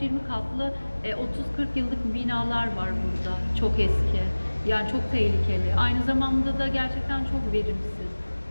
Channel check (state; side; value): inverted; both; correlation -1.00